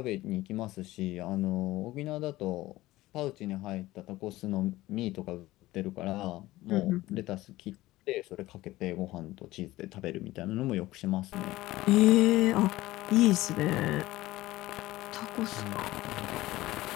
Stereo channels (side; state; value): right; quieter; 17.5 dB